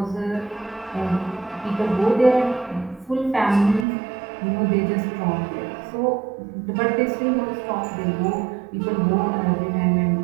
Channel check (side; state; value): left; drops out; at 3.9 s